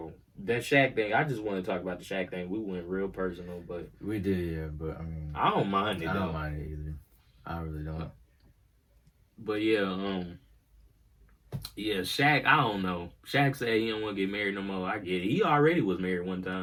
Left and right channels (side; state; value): both; identical; correlation 1.00